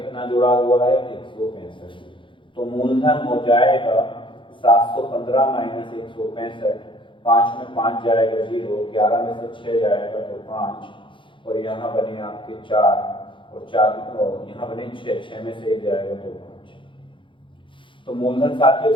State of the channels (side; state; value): right; late; 0.24 ms